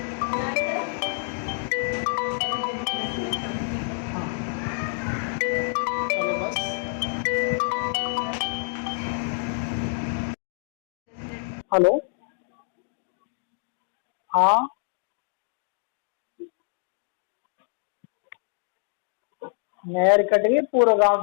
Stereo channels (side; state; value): right; silent; 60 dB below the other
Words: हाँ, चलो बस। हेलो, हाँ, नहर कट गई, पूरा गांव